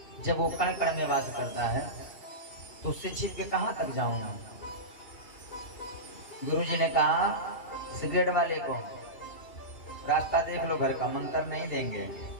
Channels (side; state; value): right; late; 2.8 ms